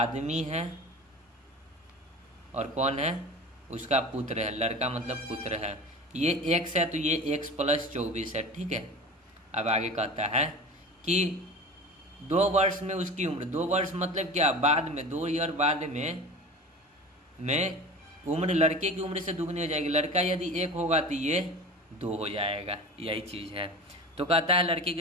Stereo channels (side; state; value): both; normal; correlation 0.35